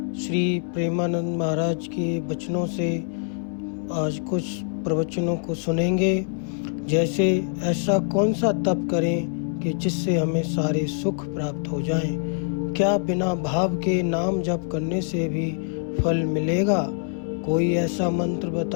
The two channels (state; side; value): silent; right; 62 dB below the other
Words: श्री प्रेमानंद महाराज के वचनों से आज कुछ प्रवचनों को सुनेंगे। जैसे ऐसा कौन सा तप करें कि जिससे हमें सारे सुख प्राप्त हो जाएं? क्या बिना भाव के नाम जप करने से भी फल मिलेगा? कोई ऐसा मंत्र